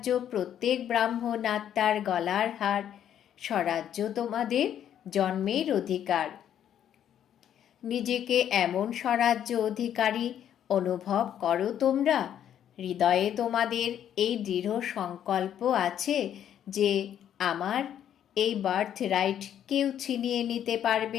প্রত্যেক ব্রাহ্মণ আত্মার গলার হার। স্বরাজ্য তোমাদের জন্মের অধিকার। নিজেকে এমন স্বরাজ্য অধিকারী অনুভব করো তোমরা। হৃদয়ে তোমাদের এই দৃঢ় সংকল্প আছে যে আমার এই বার্থ রাইট কেউ ছিনিয়ে নিতে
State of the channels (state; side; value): quieter; right; 10.0 dB